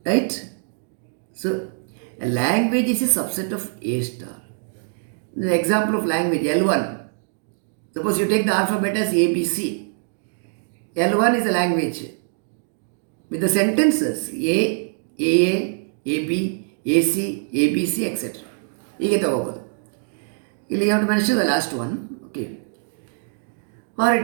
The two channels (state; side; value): silent; left; digital silence